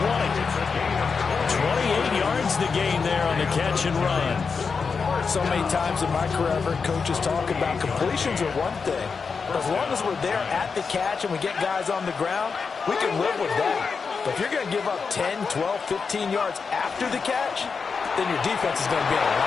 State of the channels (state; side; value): quieter; right; 5.3 dB